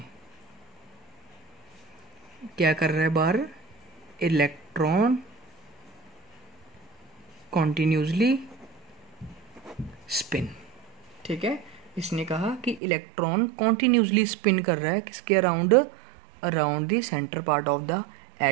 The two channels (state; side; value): drops out; left; at 12.8 s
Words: क्या कर रहा है, बाहर इलेक्ट्रॉन कॉन्टिन्यूसली स्पिन। ठीक है, इसने कहा कि इलेक्ट्रॉन कॉन्टिन्यूसली स्पिन कर रहा है किसके around, around the centre part of the